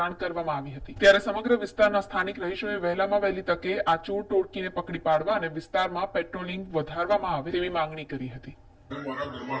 કરવામાં આવી હતી। ત્યારે સમગ્ર વિસ્તારના સ્થાનિક રહીશોએ વહેલામાં વહેલી તકે આ ચોર ટોળકીને પકડી પાડવા અને વિસ્તારમાં પેટ્રોલિંગ વધારવામાં આવે તેવી માંગણી કરી હતી।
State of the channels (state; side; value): identical; both; correlation 1.00